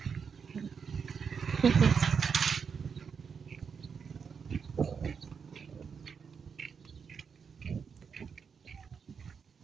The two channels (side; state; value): left; quieter; 6.2 dB